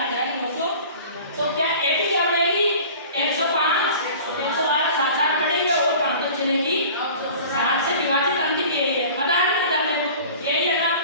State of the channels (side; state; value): both; inverted; correlation -0.42